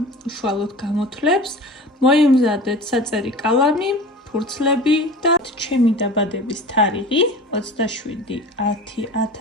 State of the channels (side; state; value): both; normal; correlation 0.37